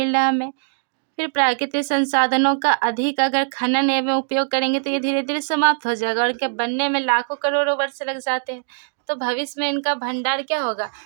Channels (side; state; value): left; silent; digital silence